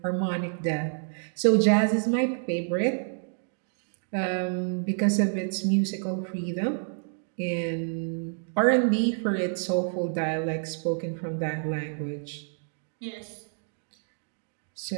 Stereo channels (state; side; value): silent; left; digital silence